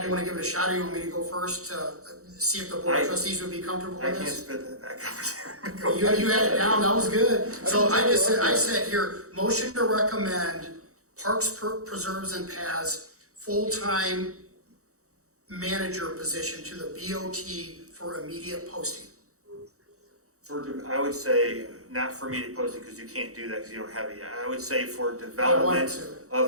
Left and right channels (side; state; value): left; late; 0.65 ms